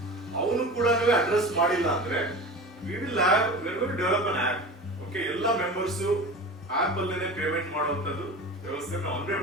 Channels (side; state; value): both; normal; correlation 0.33